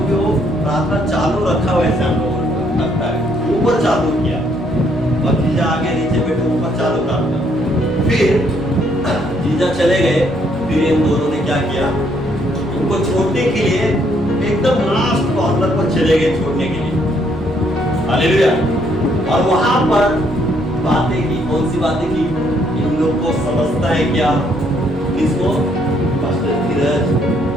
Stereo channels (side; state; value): both; normal; correlation 0.70